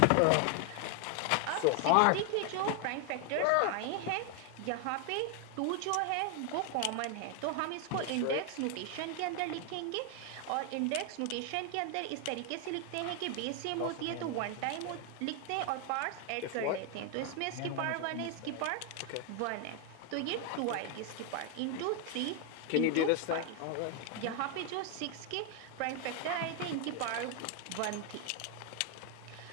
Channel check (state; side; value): different; both; correlation 0.00